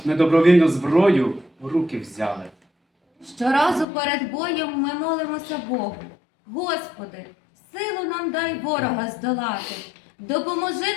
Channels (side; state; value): right; drops out; at 3.9 s